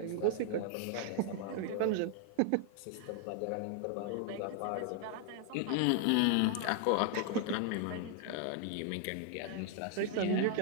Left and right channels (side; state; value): both; different; correlation 0.00